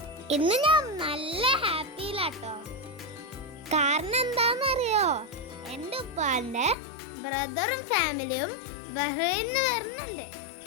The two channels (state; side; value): drops out; right; at 6.8 s